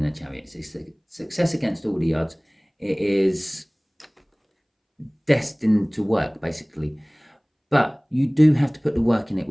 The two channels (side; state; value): both; identical; correlation 1.00